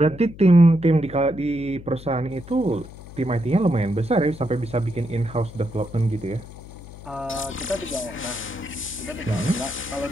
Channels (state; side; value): noise; left; hum, 16 dB below the sound